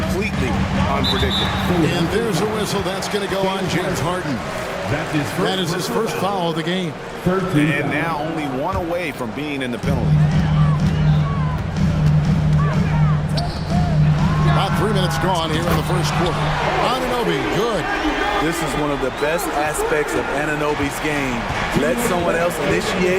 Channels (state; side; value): identical; both; correlation 1.00